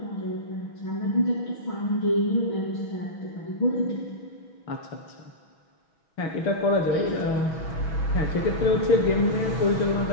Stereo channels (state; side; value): late; right; 6.2 ms